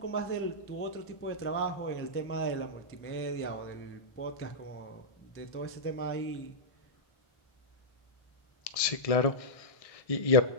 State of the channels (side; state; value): right; late; 1.6 ms